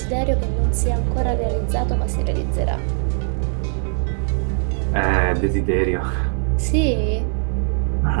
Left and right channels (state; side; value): silent; left; 56 dB below the other